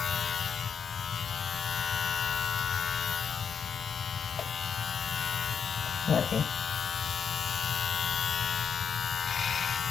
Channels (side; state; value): right; quieter; 6.9 dB